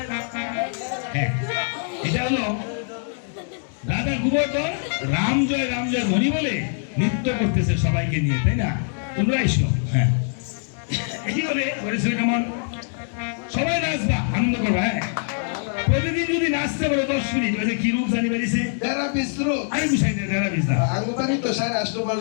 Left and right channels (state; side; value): silent; right; 63 dB below the other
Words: হ্যাঁ এটা হলো রাজা গোবর্ধন রাম জয় ধ্বনি বলে নৃত্য করতেছে সবাইকে নিয়ে, তাই না? তোমরা এসো। হ্যাঁ, এই বলে করেছিল কেমন সবাই নাচবা, আনন্দ করবা। হ্যাঁ, প্রতিদিন যদি নাচতে পারো 10 মিনিট, ওই যে কি রূপ জানি বেরিয়েছে, যারা বিস্রো আমি বুঝাই না, যারা বিজনা আঙ্গুবানি তো 8.5 মাস